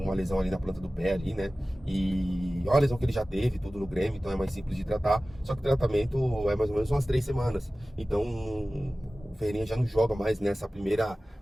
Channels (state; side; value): normal; both; correlation 0.97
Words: lesão ali na planta do pé ali, né? E olha a lesão que ele já teve, tudo no Grêmio, então é mais simples de tratar. Só que o tratamento é mais ou menos umas 3 semanas. Então o Ferreirinha já não joga mais nessa primeira